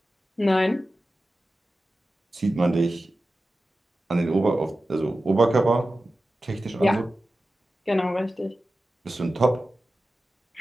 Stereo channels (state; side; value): normal; both; correlation 0.94